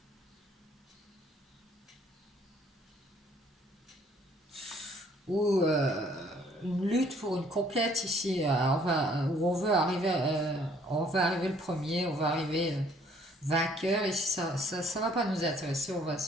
Ou une lutte pour une conquête ici, où on veut arriver le premier, on va arriver vainqueur, et si ça va pas nous intéresser, on va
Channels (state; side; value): normal; both; correlation 0.61